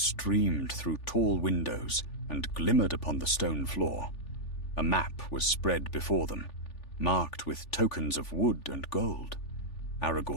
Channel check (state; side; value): late; right; 3.4 ms